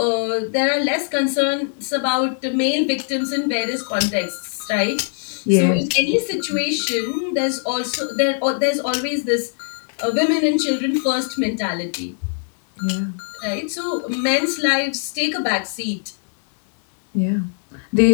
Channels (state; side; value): silent; right; 62 dB below the other